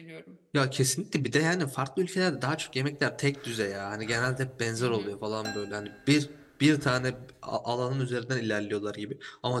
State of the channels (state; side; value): identical; both; correlation 1.00